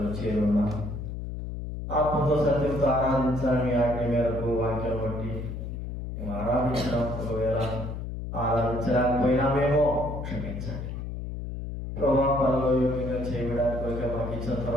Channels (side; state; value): left; noise; hum, 6 dB below the sound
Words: చేరున్నా ఆత్మతో సత్యంతో ఆరాధించాలని ఆజ్ఞ మేరకు వాక్యం బట్టి మేము ఆరాధించడం, ఒకవేళ ఆరాధించలేకపోయినామేమో క్షమించండి ప్రభా. పనులు యోగ్యంగా చేయడానికి మాకు ఇచ్చిన